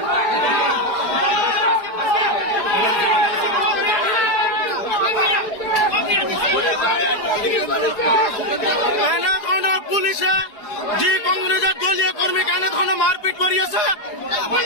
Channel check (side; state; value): right; late; 4.7 ms